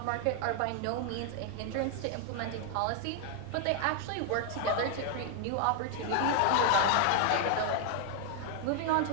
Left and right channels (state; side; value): different; both; correlation 0.00